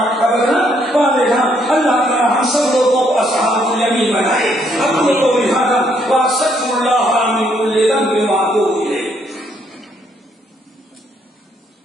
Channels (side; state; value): both; normal; correlation 0.71